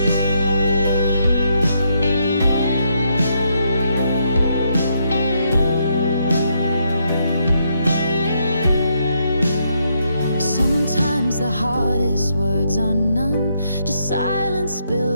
The hardest words are none, just silence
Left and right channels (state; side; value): inverted; both; correlation -0.76